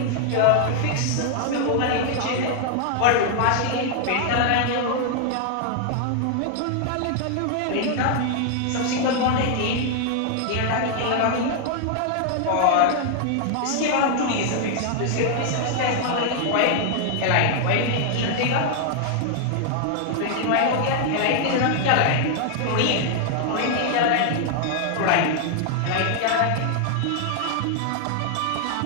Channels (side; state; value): both; different; correlation 0.00